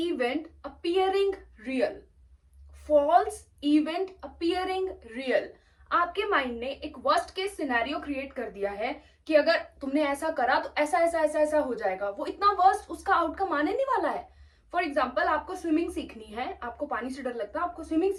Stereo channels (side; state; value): both; identical; correlation 1.00